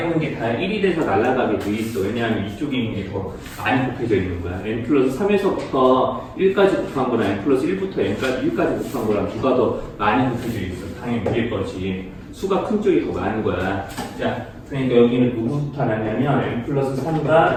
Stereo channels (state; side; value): identical; both; correlation 1.00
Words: 있는 게 다 1이 돼서 날아가게 돼 있어. 왜냐하면 이쪽에 있는 게 더 많이 곱해져 있는 거야. n 플러스 3에서부터 1까지 곱한 거랑 n 플러스 1부터 n까지 1까지 곱한 거랑 누가 더 많이 곱해져 있어. 당연히 위에 거지. 수가 큰 쪽이 더 많은 거야. 자, 그러니까 여기는 누구부터 나냐면 n 플러스